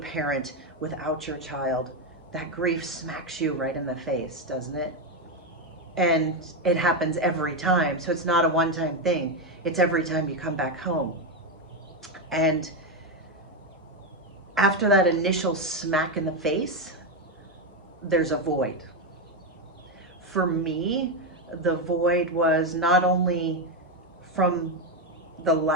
without your child, that grief smacks you right in the face, doesn't it? And it happens every time. So it's not a one-time thing. It's every time you come back home. And after that initial smack in the face, there's a void. For me, the void was not only from the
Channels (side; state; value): both; normal; correlation 0.08